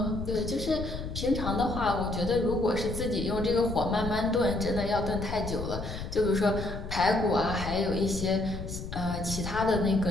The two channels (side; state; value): left; noise; rumble, 7 dB below the sound